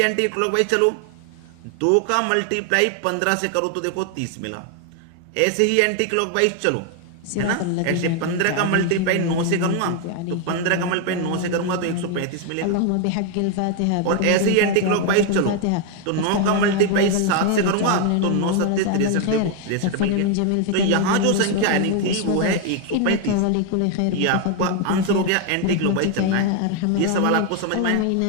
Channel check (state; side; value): different; both; correlation 0.01